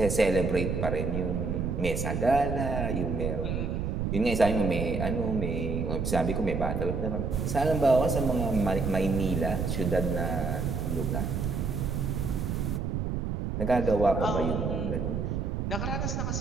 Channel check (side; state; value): right; noise; rumble, 1 dB below the sound